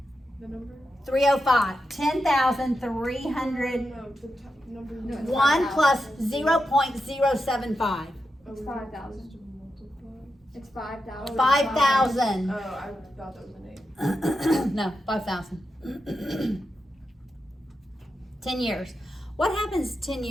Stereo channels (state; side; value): normal; both; correlation 0.88